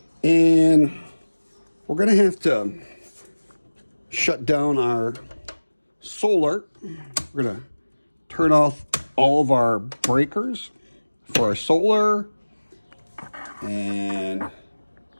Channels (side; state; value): both; inverted; correlation -1.00